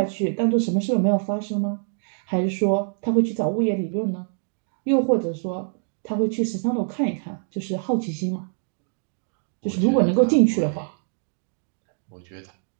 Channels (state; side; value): silent; left; digital silence